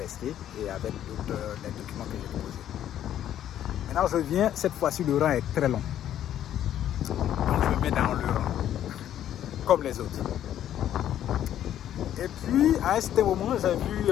et avec les documents que j'ai déposés. Maintenant je viens, cette fois-ci le rang est très long. Donc je me mets dans le rang, comme les autres. Et puis à un certain moment, j'ai vu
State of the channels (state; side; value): quieter; right; 11.1 dB